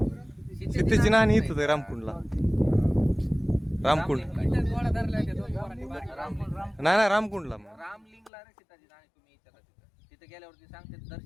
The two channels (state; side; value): drops out; right; at 8.3 s